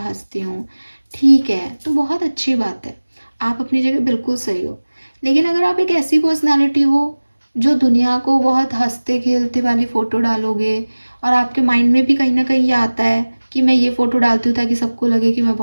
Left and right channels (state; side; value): inverted; both; correlation -1.00